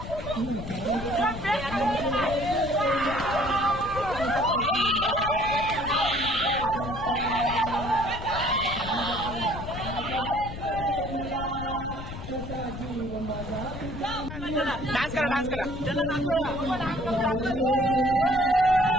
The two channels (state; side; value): noise; left; rumble, 9 dB below the sound